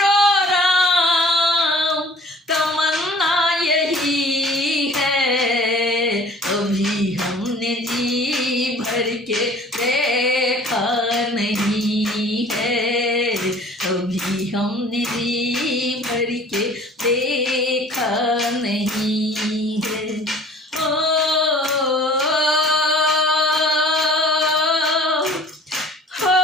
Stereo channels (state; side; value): normal; both; correlation 0.49